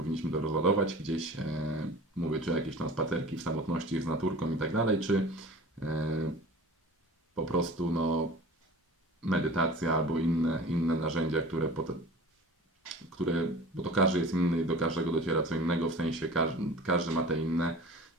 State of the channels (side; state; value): both; normal; correlation 0.41